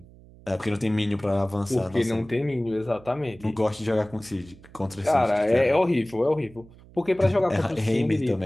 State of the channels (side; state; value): right; noise; hum, 23 dB below the sound